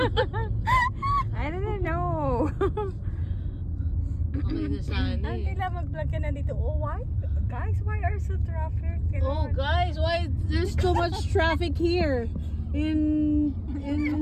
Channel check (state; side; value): identical; both; correlation 1.00